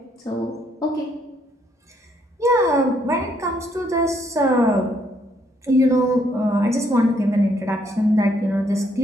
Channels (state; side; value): normal; both; correlation 0.71